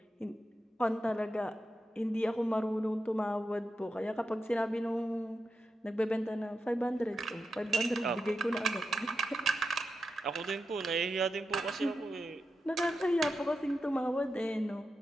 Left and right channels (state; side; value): normal; both; correlation 0.89